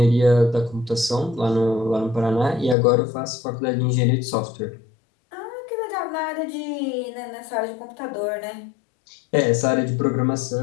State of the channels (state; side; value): drops out; right; at 2.8 s